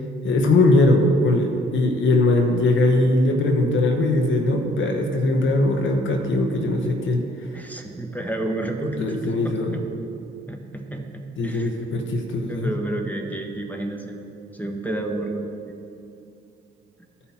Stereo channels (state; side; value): normal; both; correlation 0.63